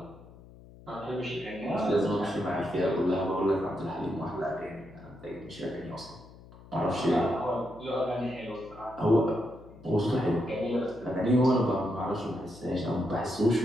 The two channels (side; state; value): left; noise; hum, 20 dB below the sound